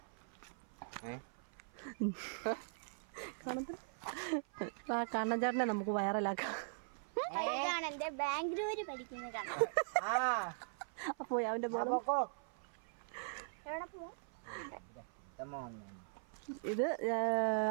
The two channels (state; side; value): silent; left; 51 dB below the other